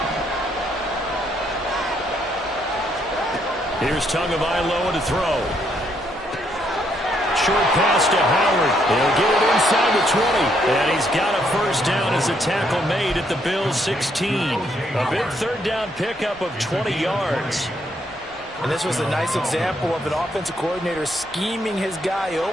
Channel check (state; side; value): normal; both; correlation 0.73